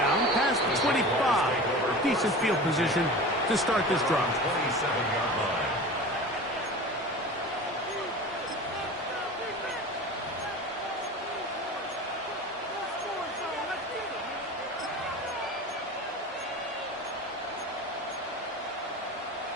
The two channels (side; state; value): both; normal; correlation 0.35